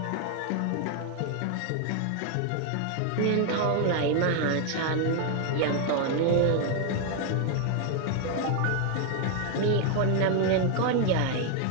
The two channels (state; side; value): different; both; correlation 0.00